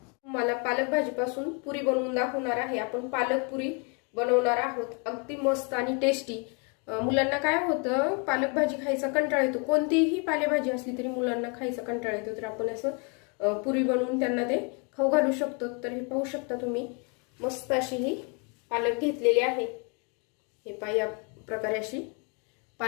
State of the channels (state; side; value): quieter; right; 35.1 dB